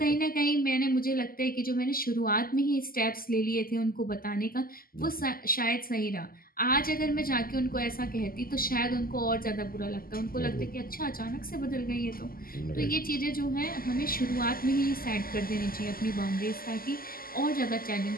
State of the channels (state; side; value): late; right; 0.42 ms